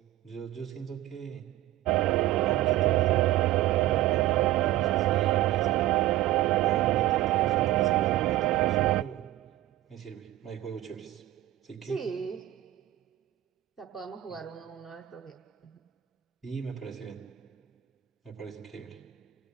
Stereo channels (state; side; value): quieter; left; 15.0 dB